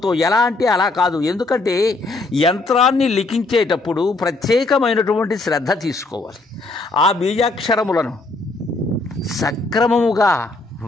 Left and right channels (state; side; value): quieter; right; 3.3 dB